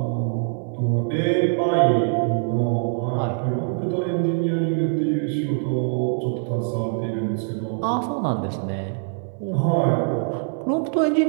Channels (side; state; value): left; silent; 63 dB below the other